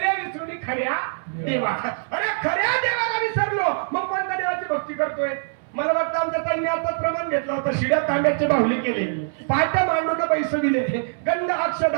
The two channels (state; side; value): silent; left; 63 dB below the other